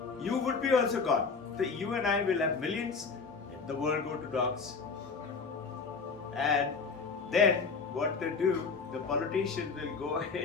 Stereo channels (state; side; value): quieter; right; 4.9 dB